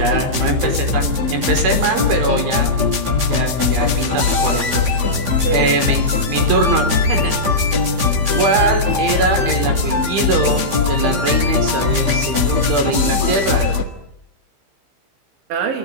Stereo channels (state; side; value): late; left; 15 ms